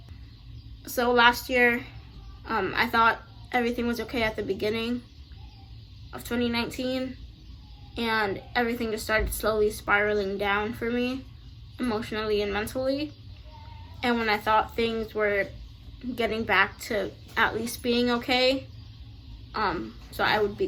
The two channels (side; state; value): both; identical; correlation 1.00